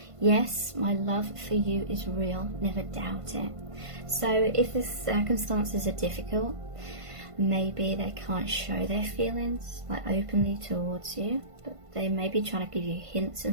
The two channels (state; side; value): late; left; 1.5 ms